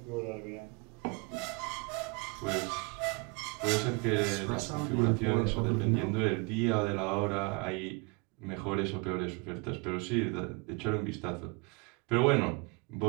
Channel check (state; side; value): quieter; left; 30.1 dB